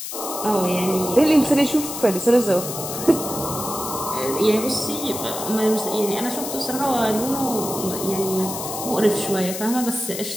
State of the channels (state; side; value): noise; left; hiss, 7 dB below the sound